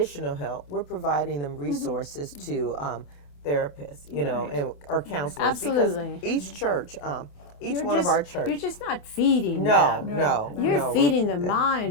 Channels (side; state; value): right; late; 28 ms